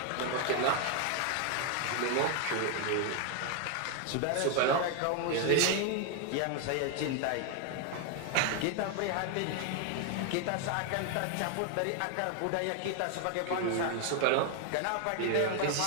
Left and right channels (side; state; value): both; different; correlation 0.01